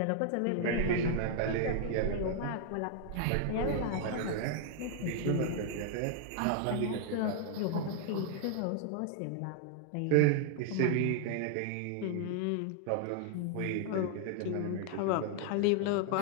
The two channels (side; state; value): both; different; correlation 0.00